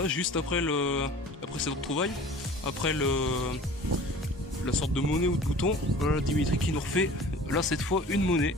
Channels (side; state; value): both; normal; correlation 0.43